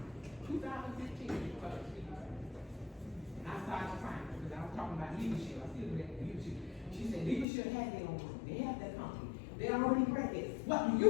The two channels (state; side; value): drops out; right; at 7.5 s